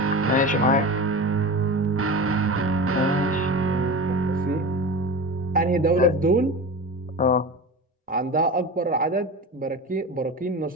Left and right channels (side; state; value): both; normal; correlation 0.29